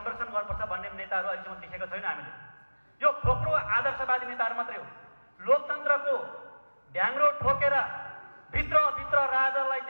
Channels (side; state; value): both; inverted; correlation -1.00